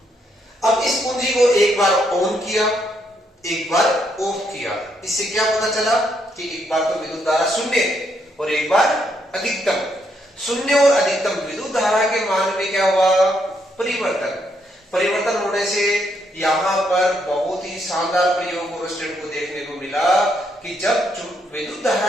अब इस कुंजी को एक बार ऑन किया, एक बार ऑफ किया। इससे क्या पता चला कि एक बार तो विद्युत धारा शून्य और एक बार अधिकतम। शून्य और अधिकतम विद्युत धारा के मान में क्या हुआ? परिवर्तन होने से यहां पर बहुत ही शानदार प्रयोग ओरस्टेड को देखने को मिला कि जब विद्युत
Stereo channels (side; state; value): both; normal; correlation 0.75